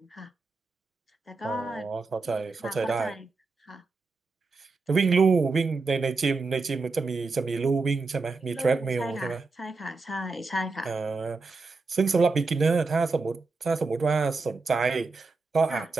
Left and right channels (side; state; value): left; quieter; 3.9 dB